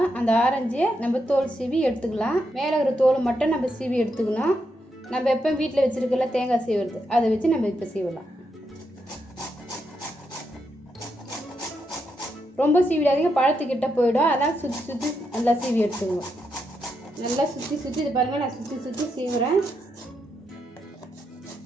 அந்த ஆரஞ்சை நம்ம தோல் சீவி எடுத்துக்கலாம். மேலே இருக்கிற தோல் மட்டும் நம்ம சீவி எடுத்துக்கணும். நம்ம எப்போ வீட்டில் வச்சுருக்கல தேங்காய் சீவுறது அதை வச்சு நம்ம இப்போ சீவலாம். ரொம்ப சீவிடாதீங்க, பழத்துக்கிட்ட போயிடும். அதனால் சுற்றி சுற்றி நல்லா சீவி எடுத்துக்குவோம். நல்லா சுற்றி சுற்றி இது பாருங்கள், நான் சுற்றி சுற்றி சீவுறேன்.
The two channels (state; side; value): normal; both; correlation 0.82